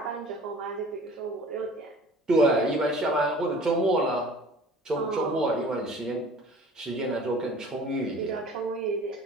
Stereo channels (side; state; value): both; normal; correlation 0.46